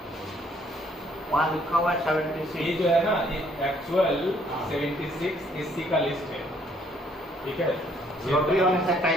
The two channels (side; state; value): both; normal; correlation 0.65